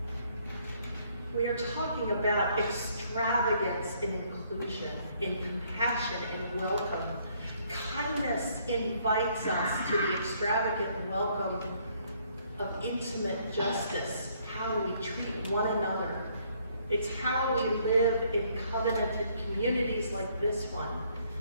We are talking about extravagance in inclusion, in compassion, in welcome. Kindness invites us to the extravagant welcome of intimate justice, how we treat one another. It's how we live in covenanted communities like this one.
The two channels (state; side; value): inverted; both; correlation -0.67